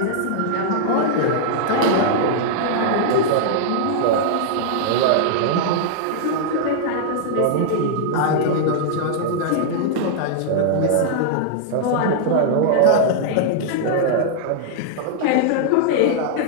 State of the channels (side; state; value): both; different; correlation -0.01